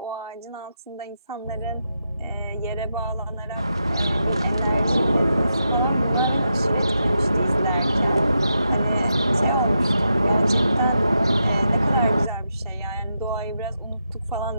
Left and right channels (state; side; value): inverted; both; correlation -0.84